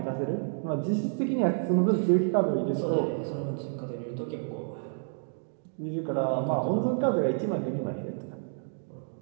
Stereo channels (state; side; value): silent; left; digital silence